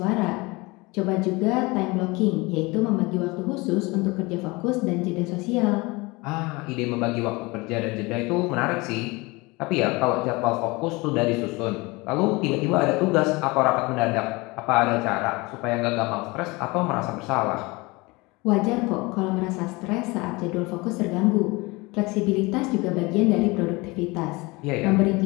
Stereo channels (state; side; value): quieter; right; 24.4 dB